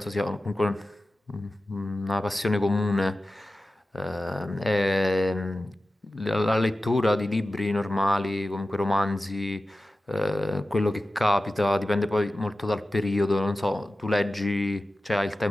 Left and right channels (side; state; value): both; normal; correlation 0.95